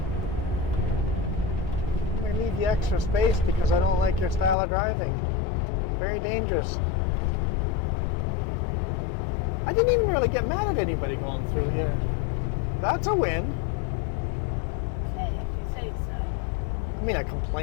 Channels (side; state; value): right; drops out; at 4.5 s